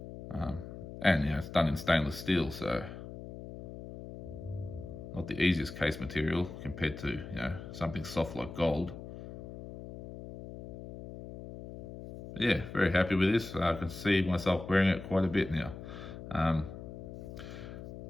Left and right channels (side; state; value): left; noise; hum, 11 dB below the sound